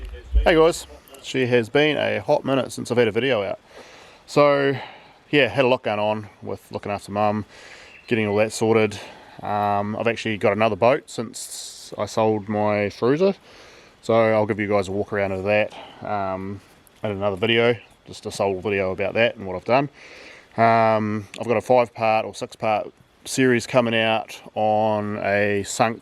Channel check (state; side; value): identical; both; correlation 1.00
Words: Hey guys, she has been a hot minute since I've had a video out. So yeah, had a lot going on with looking after mum, getting all that sorted. I've actually got another boat since I sold my Fruiser, so I'll give you guys a walk around of that and another video, just a sole video about that and what I've done. I've got a 5-part or 6-part series coming out on a